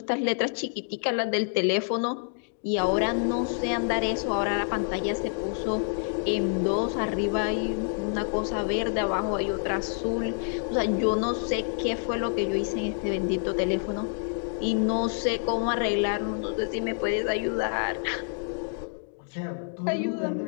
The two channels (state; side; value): silent; right; 60 dB below the other